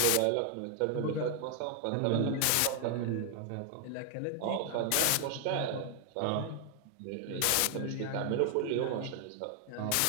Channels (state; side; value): different; both; correlation 0.00